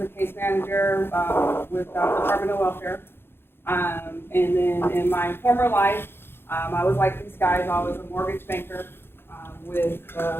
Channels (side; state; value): right; late; 0.11 ms